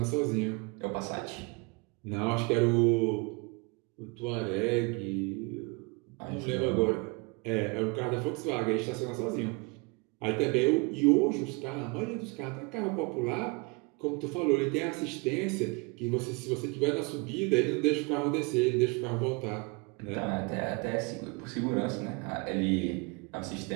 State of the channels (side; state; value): left; quieter; 29.8 dB